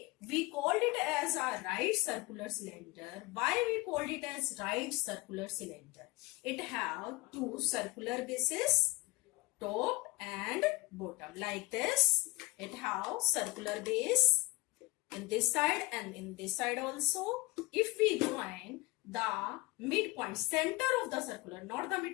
we called it as a right circular cylinder. Why we called it as right circular cylinder? It have two circular bases, top and bottom, like this. It have circular base in this side and in this side also. If we join the midpoint, center of the circular, not the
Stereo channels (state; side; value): quieter; right; 22.4 dB